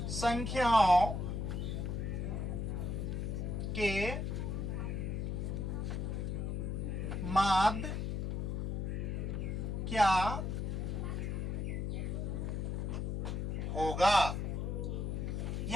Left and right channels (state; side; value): noise; left; hum, 1 dB below the sound